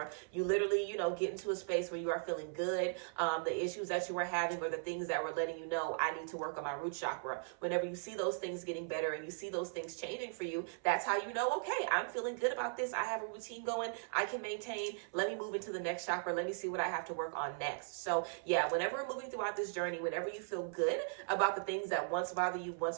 you literally, get into a space where you are feeling good. The issues that you were having or the things that were letting you know, I need to work on my root chakra. Whenever you see those things getting better and you see those things changing for you, that's how you know, okay, I'm feeling good about this. I have a routine going. I can maintain. Let me move into the next chakra. Let me see what I have to work on next. So yeah, whenever we're moving throughout this journey, whenever you feel good about the things that once bothered you,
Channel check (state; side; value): silent; left; 52 dB below the other